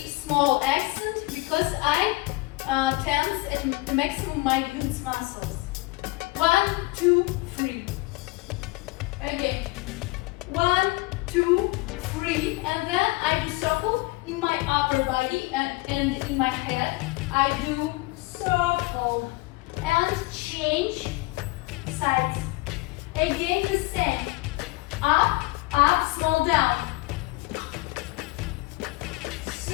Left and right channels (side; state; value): right; quieter; 22.8 dB